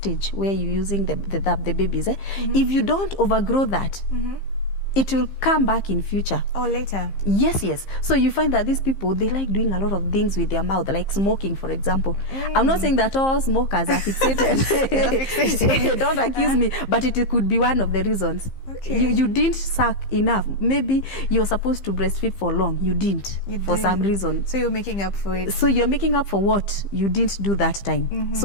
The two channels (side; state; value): right; late; 15 ms